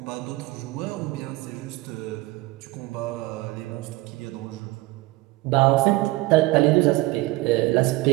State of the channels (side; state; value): left; quieter; 20.1 dB